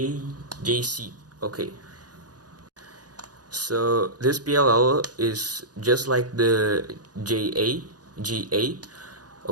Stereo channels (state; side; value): late; left; 0.69 ms